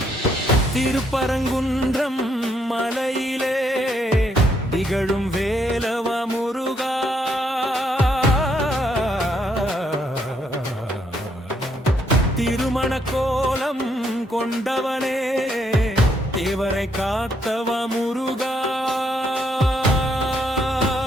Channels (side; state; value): both; normal; correlation 0.73